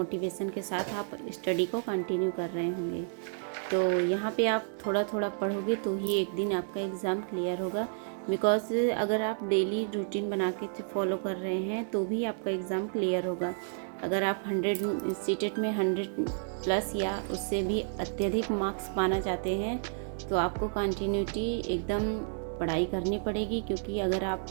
के साथ आप स्टडी को कंटिन्यू कर रहे होंगे। तो यहाँ पे आप थोड़ा थोड़ा पढ़ोगे तो ही एक दिन आपका एग्ज़ाम क्लियर होगा। बिकॉज अगर आप डेली रूटीन बना के फॉलो कर रहे हैं तो भी आपका एग्ज़ाम क्लियर होगा। अगर आप 100 सीटेट में 100+ या उससे भी अत्यधिक मार्क्स पाना चाहते हैं तो आपको कंटिन्यूटी एकदम पढ़ाई करनी पड़ेगी। क्योंकि अगर आप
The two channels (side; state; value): left; silent; digital silence